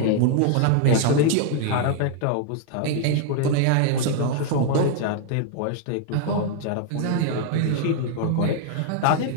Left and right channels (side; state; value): both; different; correlation 0.00